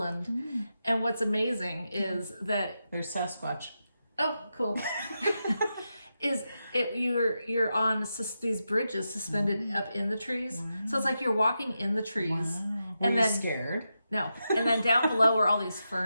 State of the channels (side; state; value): both; inverted; correlation -0.88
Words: And what's amazing is that there's Sasquatch. Oh, cool. You're on these bridges suspended up in the trees. Wow. So it's like you're walking in the trees. Wow. And then scared? No. And then down below are all these